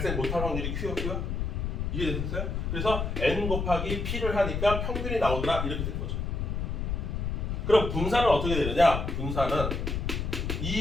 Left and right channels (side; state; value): left; noise; rumble, 2 dB below the sound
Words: 못할 확률이 q였고요. 이게 됐어요? 그래서 n 곱하기 p를 하니까 평균이 나오더라 이렇게 된 거죠. 그럼 분산은 어떻게 되느냐? 분산은